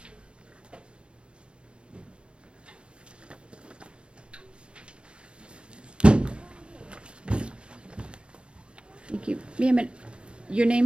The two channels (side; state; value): left; late; 0.057 ms